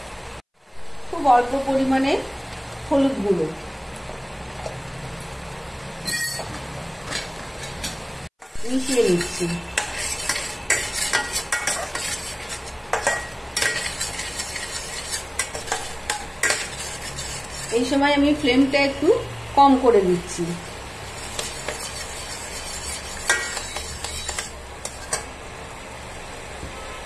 খুব অল্প পরিমাণে হলুদ গুঁড়ো, মিশিয়ে নিচ্ছি। এই সময় আমি ফ্লেমটা একটু কম করে দিচ্ছি।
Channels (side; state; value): both; identical; correlation 1.00